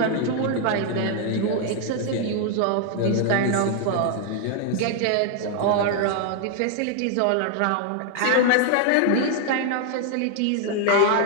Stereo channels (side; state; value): both; different; correlation 0.00